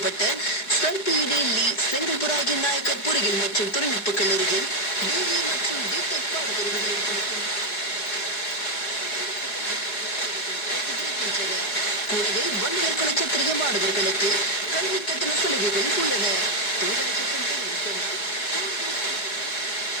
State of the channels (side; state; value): right; late; 5.1 ms